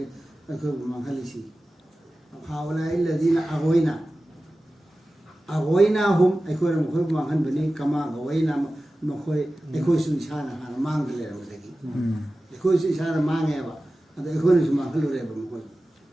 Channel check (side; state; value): both; normal; correlation 0.95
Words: mangalisi haula alladhina aghwayna hum aikoi mukhoi mangan bani kama aghwayna mukhoi aikoi su isana hana mangale rawdagi aikoi su isana mangeba ado aikoi su mangalure ba mukhoi